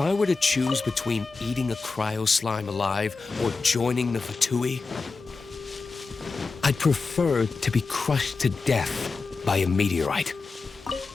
were to choose between eating a cryo slime alive or joining the Fatui, I'd prefer to be crushed to death by a meteorite.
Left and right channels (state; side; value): quieter; right; 4.2 dB